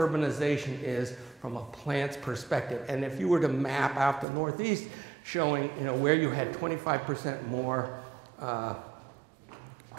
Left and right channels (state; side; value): drops out; left; at 4.2 s